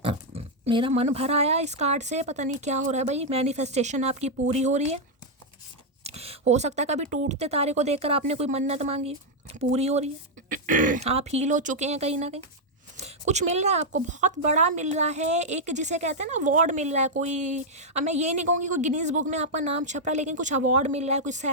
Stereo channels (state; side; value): normal; both; correlation -0.03